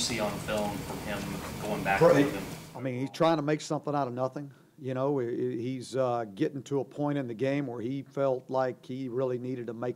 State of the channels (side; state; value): both; identical; correlation 1.00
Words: on film from him going back with him? I mean, he's trying to make something out of nothing. He's getting to a point in the game where he felt like he really needed to